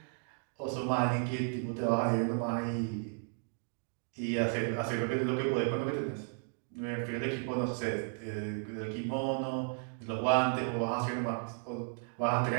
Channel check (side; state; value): left; silent; 55 dB below the other